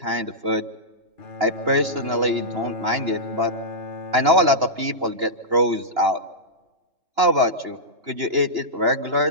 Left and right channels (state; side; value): late; left; 2.9 ms